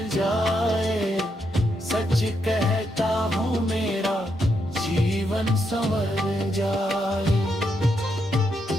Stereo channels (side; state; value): both; normal; correlation 0.80